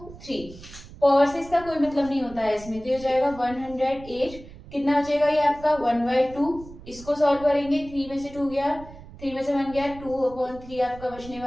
3। पावर से इसका कोई मतलब नहीं होता है इसमें, तो ये हो जाएगा 108। कितना बचेगा ये आपका 1/2। इसको सॉल्व करेंगे, 3 में से 2 गया, 3 में से 1 गया, 2/3 आपका बचने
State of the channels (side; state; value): right; noise; rumble, 17 dB below the sound